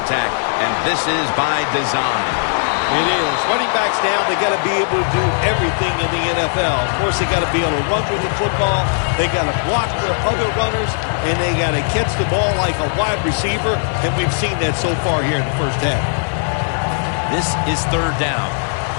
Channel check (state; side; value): silent; right; 67 dB below the other